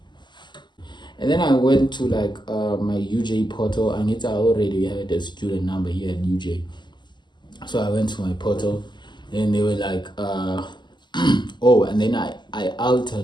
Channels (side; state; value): right; late; 0.21 ms